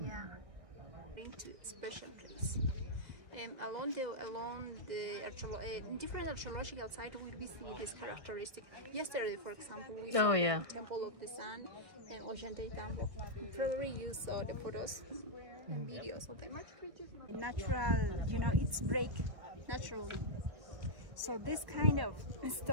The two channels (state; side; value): late; left; 1.6 ms